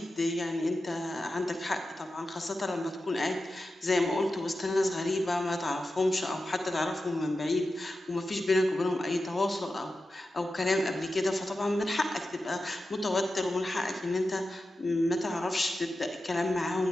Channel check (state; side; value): normal; both; correlation 0.92